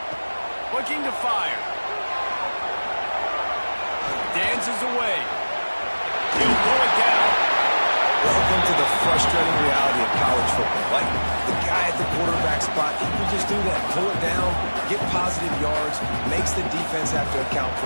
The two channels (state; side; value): inverted; both; correlation -1.00